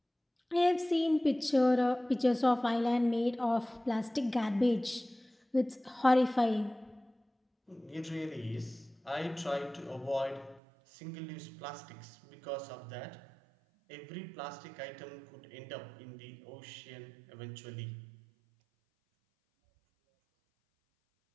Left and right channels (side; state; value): left; drops out; at 10.6 s